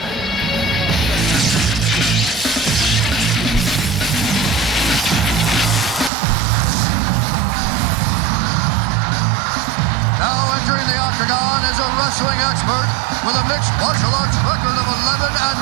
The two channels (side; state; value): left; drops out; at 6.1 s